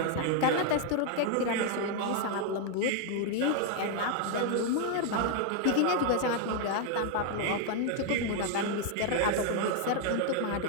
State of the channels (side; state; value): both; different; correlation 0.00